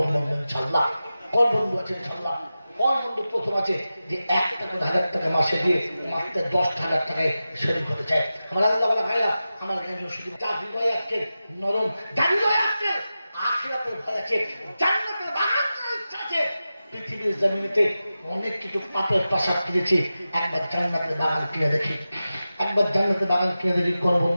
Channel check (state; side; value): inverted; both; correlation -0.93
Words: বন্ধু ইনশাআল্লাহ। কোন বন্ধু আছে ইনশাআল্লাহ? কোন বন্ধু প্রথম আছে যে 1টা করে 1000 টাকা মাসে দিয়ে মাত্র 10,000 টাকায় শরীর হতে চায়? আমার আল্লাহ ভাইরা, আমার জ্ঞান শুধু যার হৃদয় আজকে নরম, যার হৃদয় আজকে আখিরাতের ভয় আছে, জান্নাতের বাগান ইচ্ছা আছে। পৃথিবীর জমিনেতে অনেক কিছু পাপের প্রাসাদ কিনেছি, একবার জান্নাতের বাগান কিনে দেখি, একবার জান্নাতের বাগান কিনে দেখি। কোন